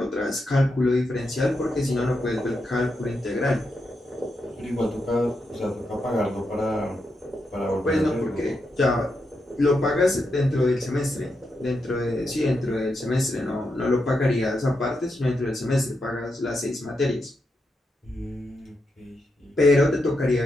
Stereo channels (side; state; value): both; normal; correlation 0.84